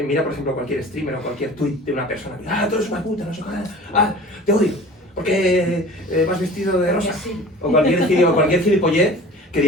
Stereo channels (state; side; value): normal; both; correlation 0.42